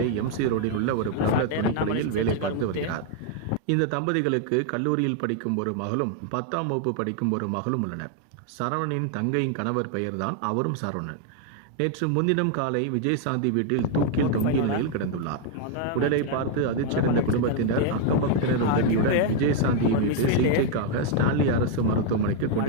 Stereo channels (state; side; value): different; both; correlation 0.00